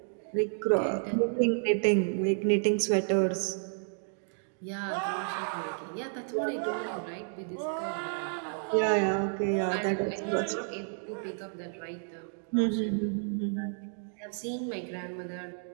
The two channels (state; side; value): silent; left; 57 dB below the other